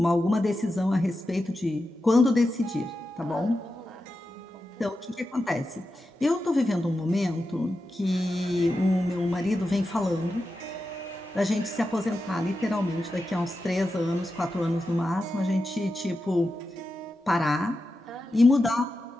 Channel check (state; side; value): normal; both; correlation 0.90